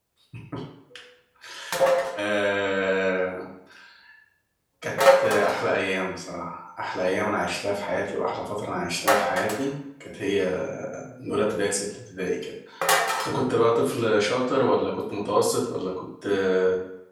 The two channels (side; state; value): both; identical; correlation 1.00